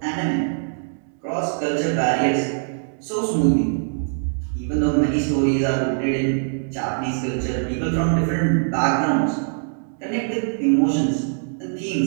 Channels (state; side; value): silent; left; digital silence